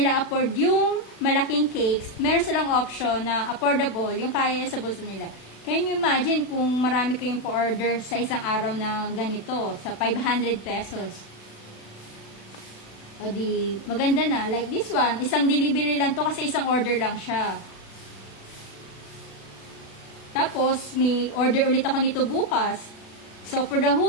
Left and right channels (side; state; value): right; late; 36 ms